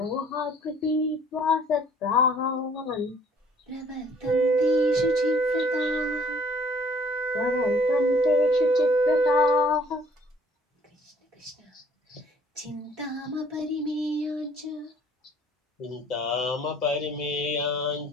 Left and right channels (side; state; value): both; normal; correlation 0.57